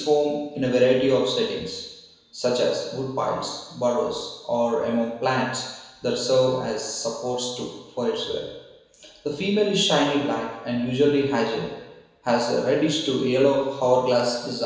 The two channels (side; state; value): both; identical; correlation 1.00